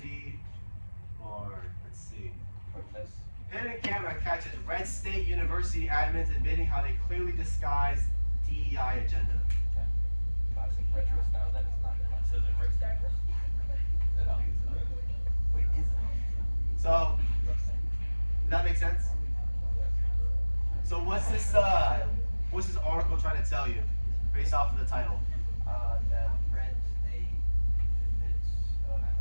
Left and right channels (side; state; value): both; inverted; correlation -1.00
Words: or let's see. Protest. Hidden camera catches Red State University admins admitting how they clearly disguised DEI agenda. Classic retro style. That is not classic. Says it right there. I don't think it's not. Wait, is it? So, does that make sense? So what's this article trying to tell you, based off of the title? That Red State admits, I